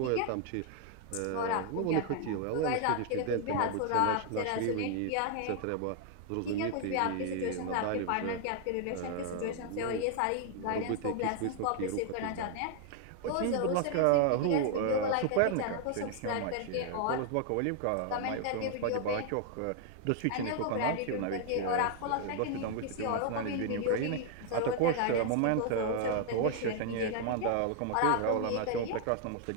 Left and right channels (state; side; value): different; both; correlation 0.00